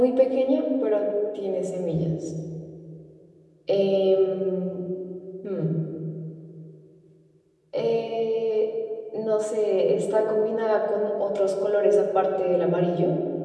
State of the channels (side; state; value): both; identical; correlation 1.00